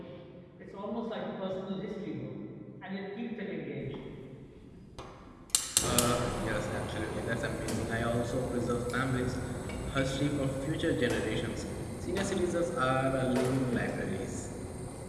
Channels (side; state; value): both; identical; correlation 1.00